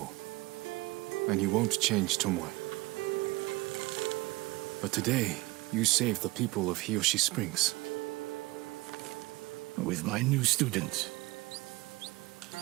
And you won't change Tomoe. But today, you saved the people of Hiyoshi Springs. With my new student.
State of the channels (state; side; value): quieter; left; 21.5 dB